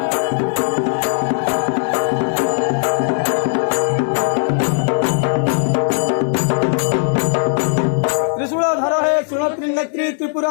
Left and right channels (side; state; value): right; silent; digital silence